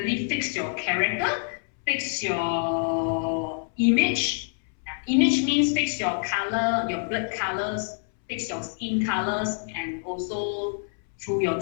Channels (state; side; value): silent; right; 61 dB below the other